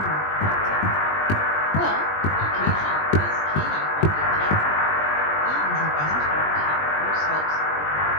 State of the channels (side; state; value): right; late; 20 ms